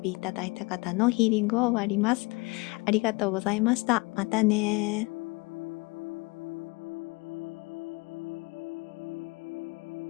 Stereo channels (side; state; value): right; quieter; 26.4 dB